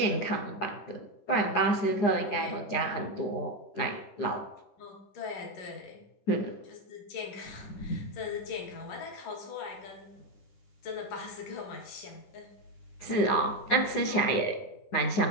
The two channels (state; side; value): late; right; 9.7 ms